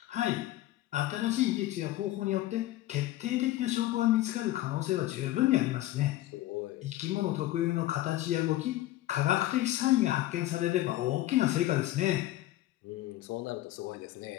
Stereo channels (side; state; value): right; quieter; 15.5 dB